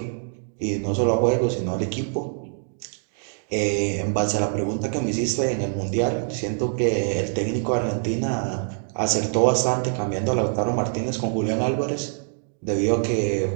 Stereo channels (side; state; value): left; silent; digital silence